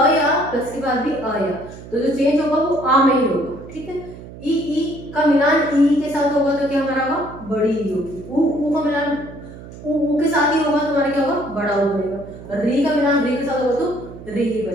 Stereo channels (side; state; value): right; noise; hum, 15 dB below the sound